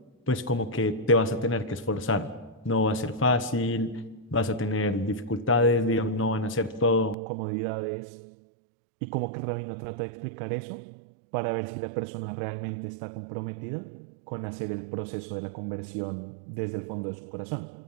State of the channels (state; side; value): drops out; left; at 7.2 s